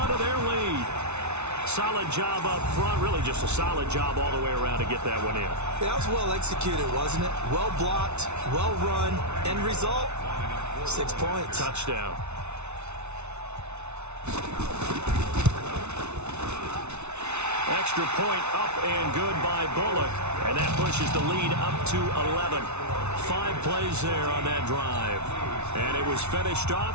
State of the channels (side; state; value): left; late; 0.81 ms